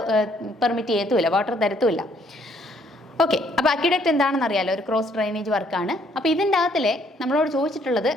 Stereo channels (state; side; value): normal; both; correlation 0.66